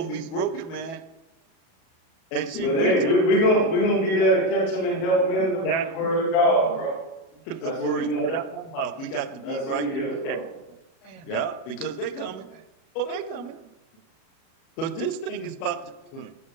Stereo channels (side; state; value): right; late; 37 ms